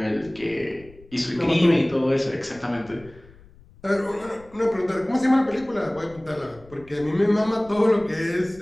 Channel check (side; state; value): left; noise; rumble, 24 dB below the sound